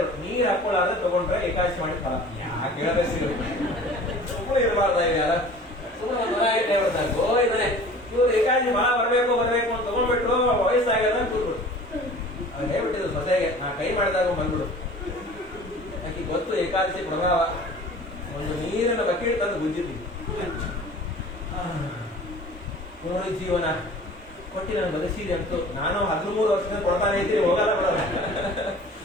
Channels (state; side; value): normal; both; correlation 0.44